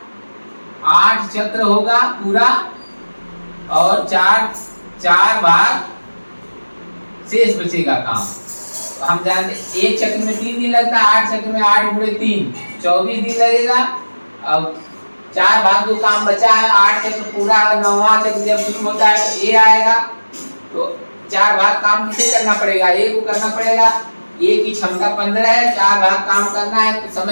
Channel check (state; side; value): inverted; both; correlation -1.00